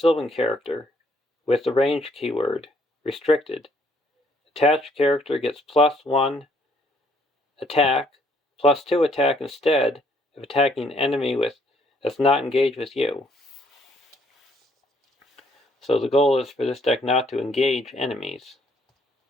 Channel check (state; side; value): normal; both; correlation 0.66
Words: character with the range keyword, restricted. Attached character gets +1 attack, +2 attack instead if attacking enemy that's not engaged with you. So the goal is for this deck not to engage enemies.